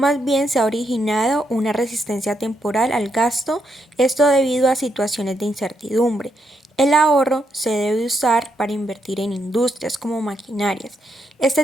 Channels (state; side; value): normal; both; correlation 0.79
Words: bien se ha originado una resistencia temporal al gasto, esto debido a situaciones de incertidumbre. El ahorro se debe usar para invertir en industrias como maquinarias.